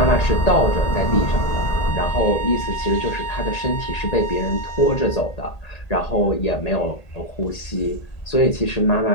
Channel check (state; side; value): late; right; 1.8 ms